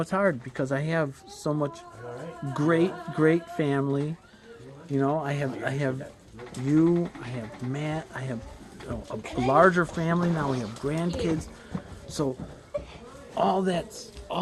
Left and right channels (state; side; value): identical; both; correlation 1.00